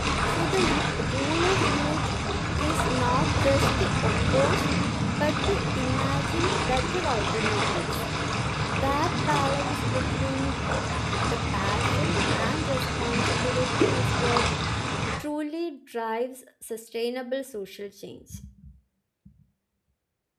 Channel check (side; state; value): both; identical; correlation 1.00